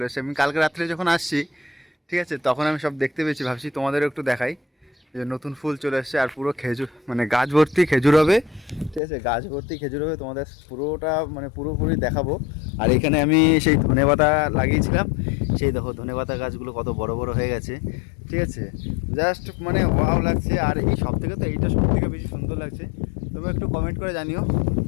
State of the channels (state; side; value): drops out; right; at 9.0 s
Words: এসছে। আমি কালকে রাত্রে যখন আসছি, ঠিক আছে, তখন আমি সব দেখতে পেয়েছি, ভাবছি তোমাদেরও একটু দেখাই। যে নতুন ফুল চলে এসছে আর পুরো খেজুর, মানে গাছ ভর্তি খেজুর হবে। ঠিক আছে, গাছ ভর্তি খেজুর হবে, তোমাদের পুরোটা মানে পুরোপুরি দেখাবো। আর এখানে আমি সেই ধনেপাতা লাগিয়েছিলাম, সেই দেখো ধনেপাতা গাছগুলো কত বড় বড় হয়ে গেছে। ঠিক আছে, জাস্ট মানে ওয়াও লাগছে। আর এই সব থেকে তো এইটা সব থেকে বেশি সুন্দর লাগছে। তোমরা একটু কমেন্ট করে জানিও।